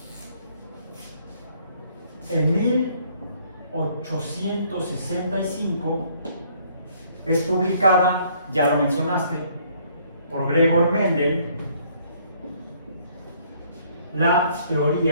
En 1865 es publicada, ya lo mencionaste, por Gregor Mendel, la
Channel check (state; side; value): inverted; both; correlation -0.63